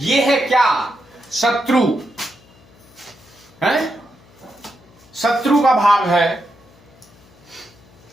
है क्या? शत्रु है, शत्रु का भाव है।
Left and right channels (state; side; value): noise; left; hum, 27 dB below the sound